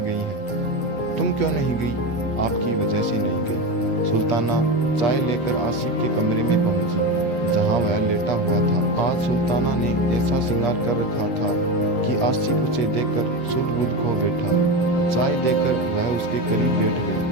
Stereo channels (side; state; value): right; late; 8.4 ms